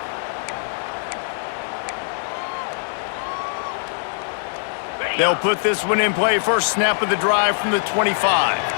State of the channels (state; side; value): silent; right; 64 dB below the other